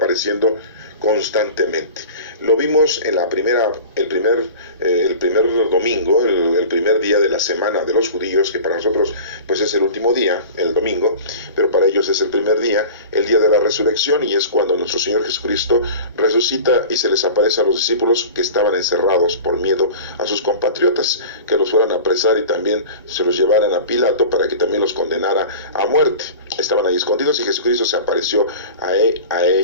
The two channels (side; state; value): both; inverted; correlation -0.36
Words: constantemente. Lo vimos en el primer domingo, el primer día de la semana de los judíos, que para nosotros pues es el último día, el domingo, pero para ellos es el primer día, el día de la resurrección, y es cuando nuestro Señor Jesucristo resucita y se les aparece a los discípulos que estaban encerrados por miedo a sus compatriotas, que los fueran a apresar y también se los llevaran a Pilato para que también los condenara a muerte. Estaban ahí escondidos y Jesucristo se apareció a